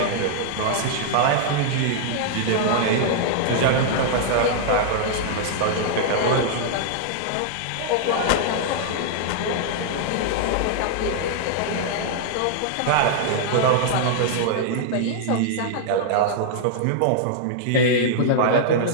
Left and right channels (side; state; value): both; different; correlation -0.01